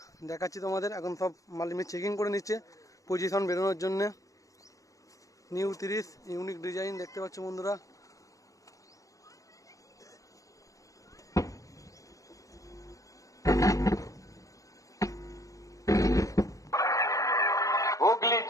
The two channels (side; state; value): right; late; 0.16 ms